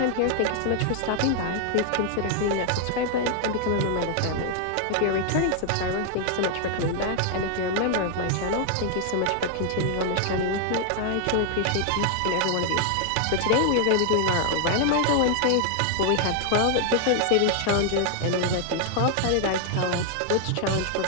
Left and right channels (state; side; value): different; both; correlation 0.00